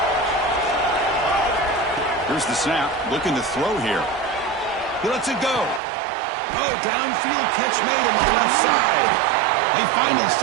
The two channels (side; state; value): left; drops out; at 5.8 s